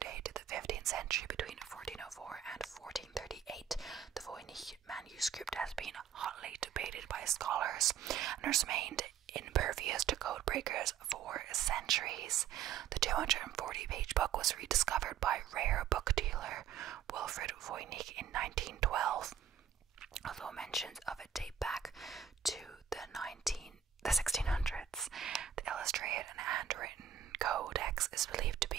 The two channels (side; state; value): left; quieter; 8.8 dB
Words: dated to the 15th century between 1404 and 1438. The Voynich manuscript has been hotly debated by scholars and has remained impervious to code breakers for centuries. The 240-page book was rediscovered by rare book dealer Wilfrid Voynich in 1912, although mentions of it date back to the 1600s. The illustrated and handwritten codex is believed to